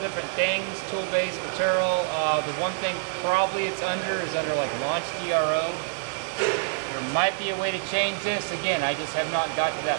different things, tool-based material. The one thing probably it's under is under like launch DRO. There might be a way to change this. Again, I just have not got to that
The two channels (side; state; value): left; silent; digital silence